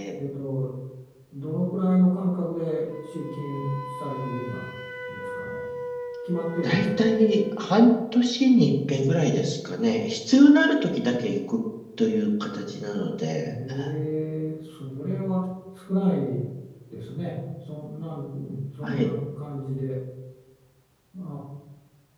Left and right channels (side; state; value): both; identical; correlation 1.00